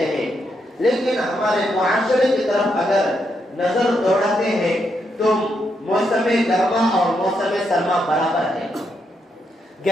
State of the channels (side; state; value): both; normal; correlation 0.80